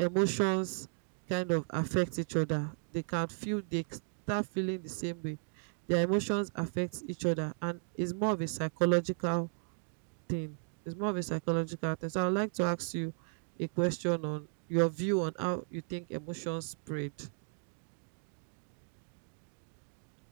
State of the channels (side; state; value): left; silent; digital silence